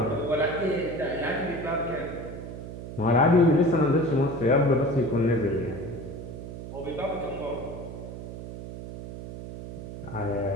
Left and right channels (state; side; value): noise; right; hum, 10 dB below the sound